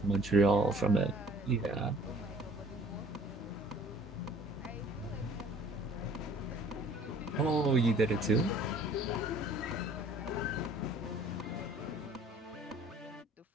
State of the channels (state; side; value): normal; both; correlation 0.53